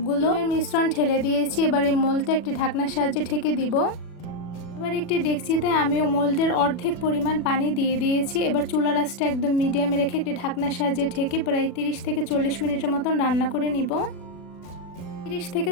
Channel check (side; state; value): right; late; 40 ms